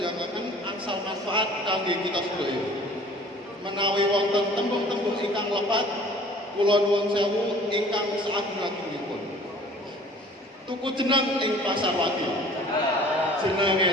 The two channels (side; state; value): both; normal; correlation 0.49